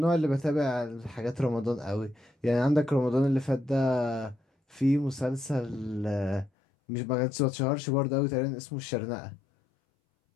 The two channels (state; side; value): drops out; right; at 6.5 s